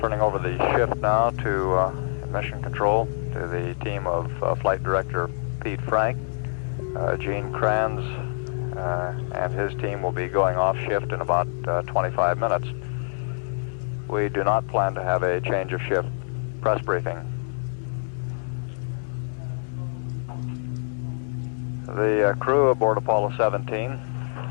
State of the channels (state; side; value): silent; right; digital silence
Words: over the shift now to Mission Control, to the team of Flight Director Pete Frank. Gene Kranz and his team will be going off shift in about 25 minutes. We do not plan to have a change of shift press briefing. The crew aboard Apollo 17